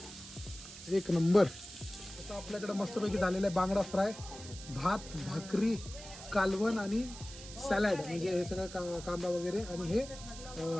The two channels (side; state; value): right; noise; hiss, 14 dB below the sound